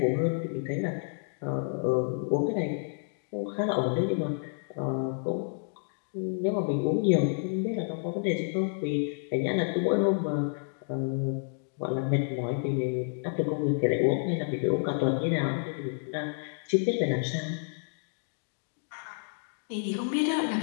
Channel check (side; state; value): right; silent; digital silence